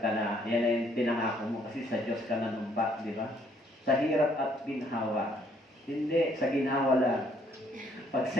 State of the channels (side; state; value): both; normal; correlation 0.66